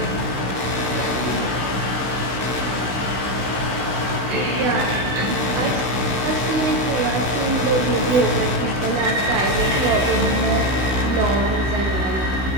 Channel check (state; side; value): late; left; 16 ms